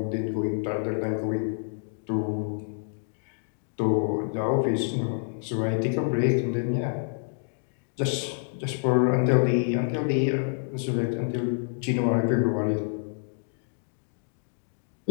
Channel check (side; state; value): right; silent; digital silence